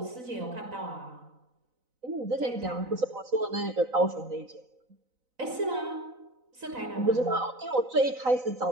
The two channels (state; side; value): late; left; 4.0 ms